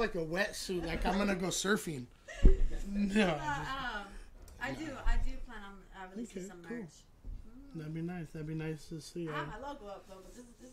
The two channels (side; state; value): both; identical; correlation 1.00